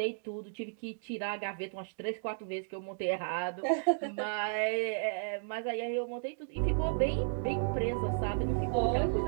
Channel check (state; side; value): silent; left; digital silence